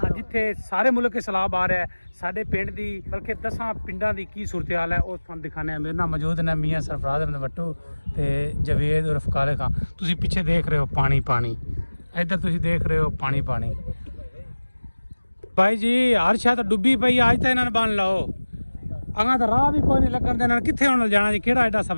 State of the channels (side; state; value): both; inverted; correlation -1.00